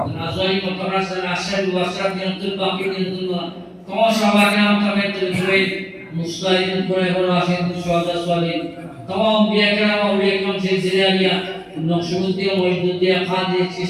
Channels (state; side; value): identical; both; correlation 1.00